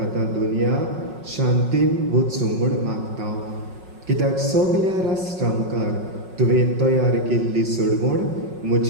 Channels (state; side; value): late; left; 5.5 ms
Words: आतां दुनिया शांतीन वचूं म्हूण मागता. कित्याक सगल्या राष्ट्रां मुखार तुवें तयार केल्ली सडवण